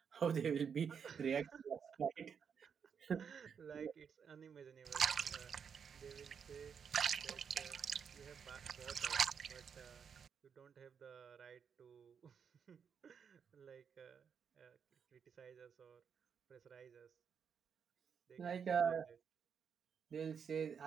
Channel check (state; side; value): quieter; left; 6.9 dB